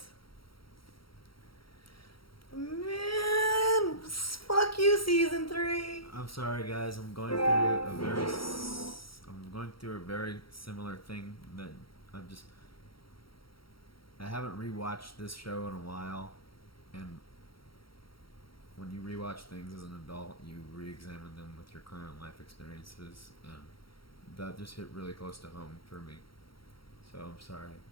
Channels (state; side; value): late; right; 0.74 ms